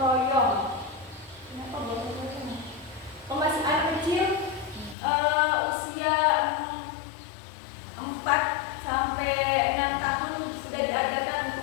Kenapa gotong royong? Masih anak kecil usia 4 sampai 6 tahun sudah diajarkan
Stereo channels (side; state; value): right; drops out; at 5.0 s